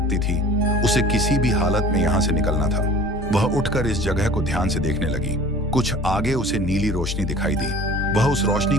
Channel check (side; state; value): both; normal; correlation 0.44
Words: थी। उसे किसी भी हालत में यहाँ से निकलना था। वह उठकर इस जगह को ध्यान से देखने लगी। कुछ आगे उसे नीली रोशनी दिखाई दी। वह उस रोशनी